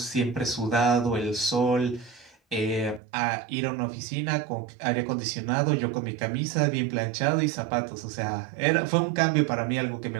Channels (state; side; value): drops out; left; at 3.0 s